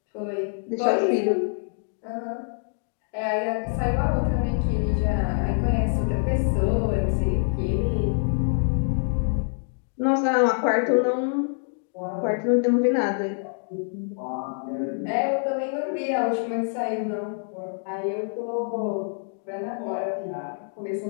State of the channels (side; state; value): right; silent; digital silence